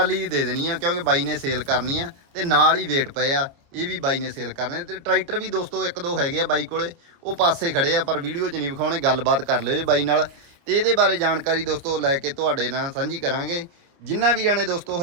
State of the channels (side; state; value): left; late; 29 ms